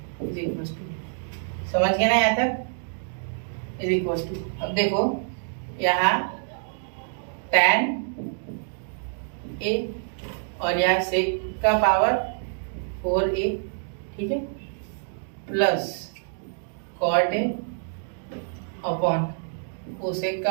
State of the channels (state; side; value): silent; left; digital silence